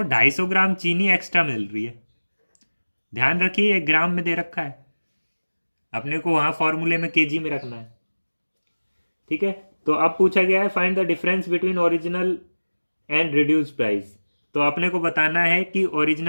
250 ग्राम चीनी एक्स्ट्रा मिल रही है। ध्यान रखिए 1 ग्राम में दे रखा है, अपने को वहां फॉर्मूले में केजी में रखना है, ठीक है। तो अब पूछा गया है find the difference between original and reduce price. तो अपने को बताना है कि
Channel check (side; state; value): both; inverted; correlation -1.00